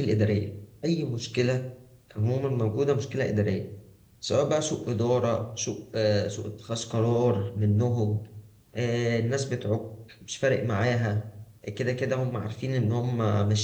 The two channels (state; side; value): identical; both; correlation 1.00